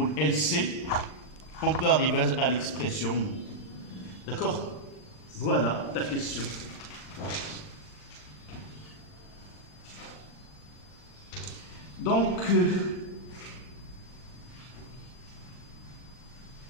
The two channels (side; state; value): right; late; 40 ms